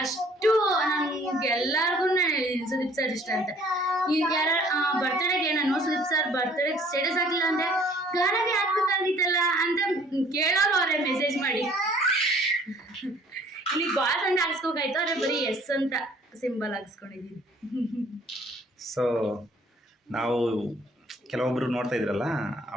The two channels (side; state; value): both; normal; correlation 0.56